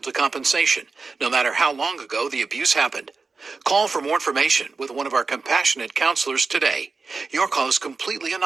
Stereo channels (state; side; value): quieter; left; 4.3 dB